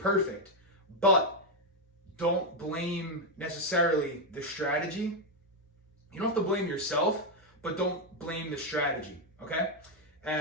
but don't blame necessarily the strategy. You don't have to blame yourself, but don't blame the strategy, okay?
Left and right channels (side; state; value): both; normal; correlation 0.03